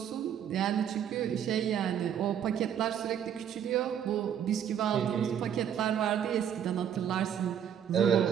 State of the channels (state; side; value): quieter; left; 9.1 dB